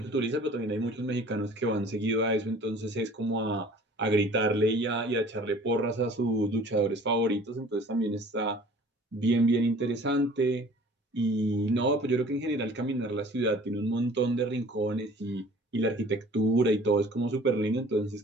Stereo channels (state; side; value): normal; both; correlation 0.49